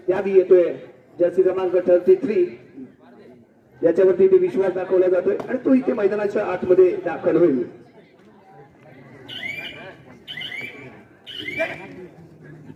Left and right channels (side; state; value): both; identical; correlation 1.00